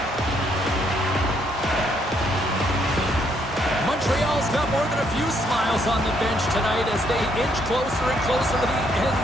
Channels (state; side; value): normal; both; correlation 0.71